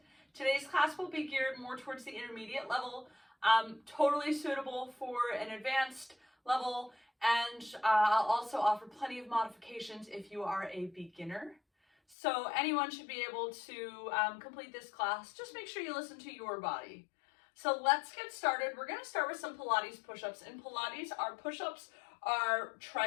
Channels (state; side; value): drops out; right; at 12.2 s